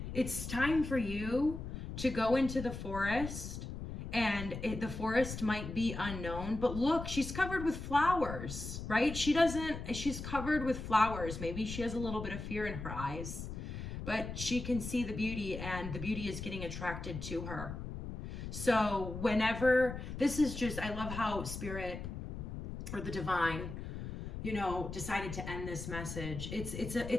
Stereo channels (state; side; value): noise; left; rumble, 7 dB below the sound